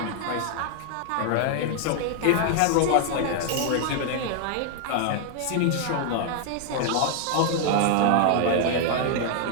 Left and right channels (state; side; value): different; both; correlation 0.00